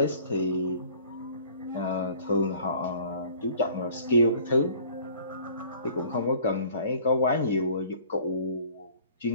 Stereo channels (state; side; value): inverted; both; correlation -0.52